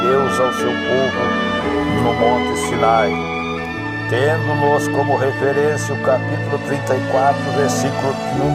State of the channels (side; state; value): both; identical; correlation 1.00